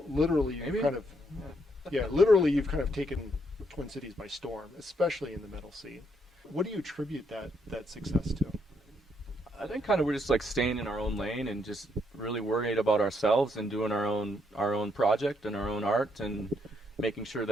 literally, Maybe. literally you've kind of taken Twin Cities by storm, especially in the metal scene. What do you attribute that success to? I think kind of we're just like staying in our own lane and just really worried about ourselves and doing our own project and our own art and making sure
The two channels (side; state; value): both; normal; correlation 0.74